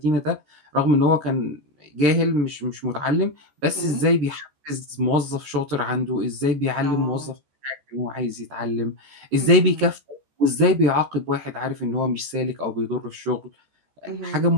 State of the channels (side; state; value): left; late; 14 ms